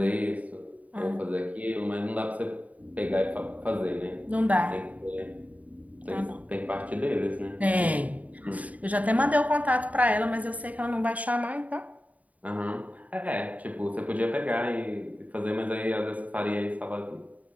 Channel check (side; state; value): left; late; 0.071 ms